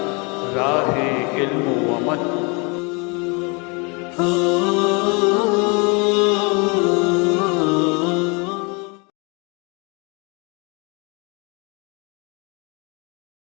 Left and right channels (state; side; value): quieter; right; 31.3 dB